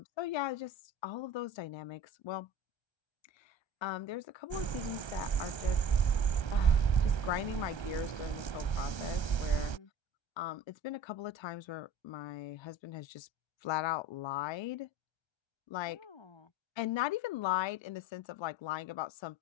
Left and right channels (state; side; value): late; right; 1.3 ms